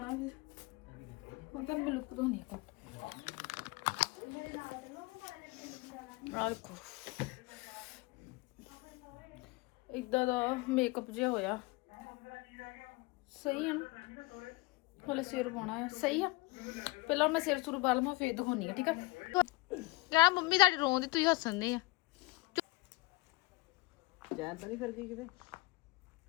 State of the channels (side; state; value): right; quieter; 22.4 dB